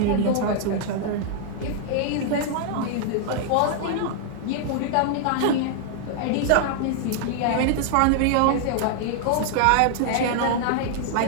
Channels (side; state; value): both; different; correlation -0.01